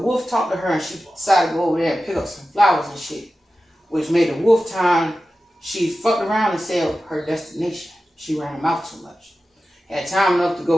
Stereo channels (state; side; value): normal; both; correlation 0.94